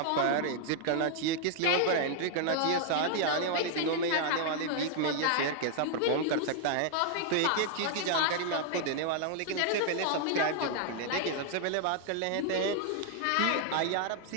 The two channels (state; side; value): different; both; correlation 0.00